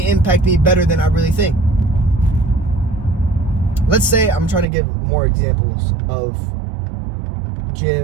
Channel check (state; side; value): drops out; left; at 4.7 s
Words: impact me better than I really think." Let's say I'm trying to give more examples of